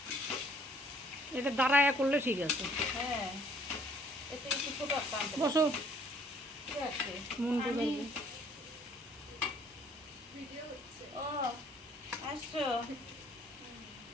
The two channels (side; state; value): both; normal; correlation 0.61